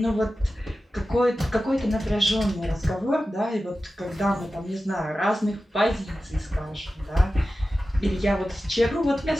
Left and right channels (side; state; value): both; normal; correlation 0.94